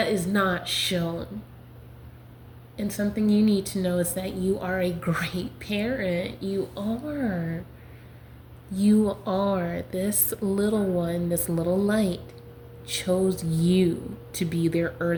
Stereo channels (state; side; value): identical; both; correlation 1.00